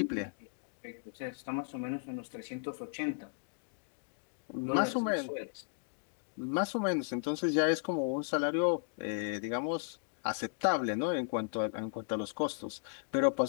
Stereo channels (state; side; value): silent; right; digital silence